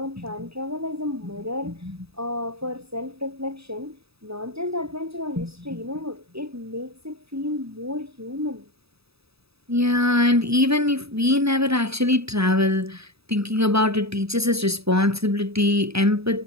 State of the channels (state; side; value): late; left; 0.78 ms